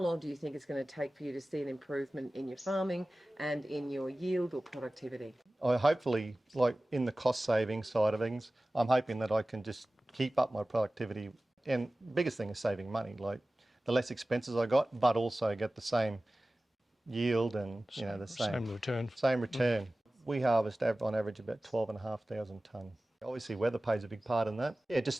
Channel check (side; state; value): both; normal; correlation 0.97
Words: do you think it's going to take for you to see an improvement in your farming and in your yield or productivity? I hopefully, like in the cost saving side of things, I'm hoping that I can just keep up my productivity. And biggest thing is saving money, like the less expenses I got, but also get the same yield and the same return. We harvest on average about 12,500 tonne. Obviously weather plays a big part in that. Yeah,